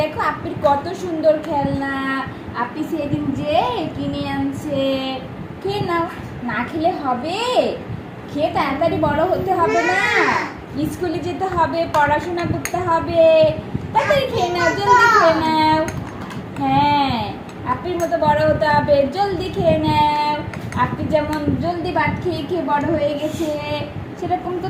দেখো আপির কত সুন্দর খেলনা। আপি সেদিন যে কিনে আনছে। খেয়ে নাও। না খেলে হবে? খেয়ে তাড়াতাড়ি বড় হতে হবে না? স্কুলে যেতে হবে, পড়াশোনা করতে হবে। তাড়াতাড়ি খেয়ে নাও, জলদি খেয়ে নাও। হ্যাঁ, আপির মতো বড় হতে হবে, জলদি খেয়ে নাও। আপনি যেমন জলদি ভাত খেয়ে খেয়ে বড় হয়ে গেছে, সেরকম তো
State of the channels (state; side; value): identical; both; correlation 1.00